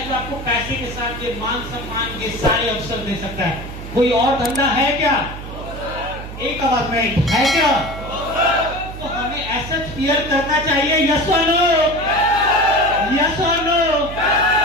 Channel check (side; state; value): right; noise; hum, 11 dB below the sound